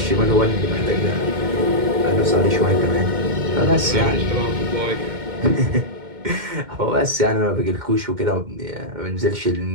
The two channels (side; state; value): left; late; 2.1 ms